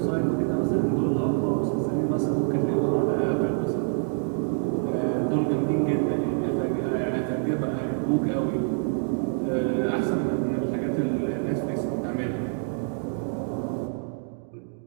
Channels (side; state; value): left; silent; 61 dB below the other